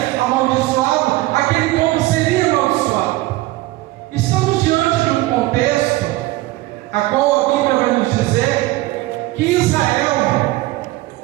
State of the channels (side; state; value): left; quieter; 18.5 dB